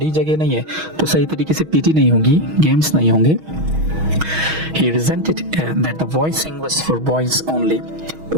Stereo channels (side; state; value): left; late; 6.3 ms